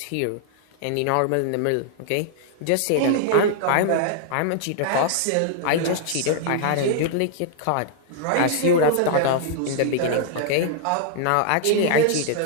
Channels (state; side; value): different; both; correlation -0.01